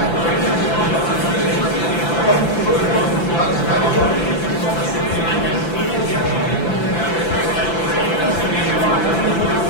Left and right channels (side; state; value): right; late; 5.9 ms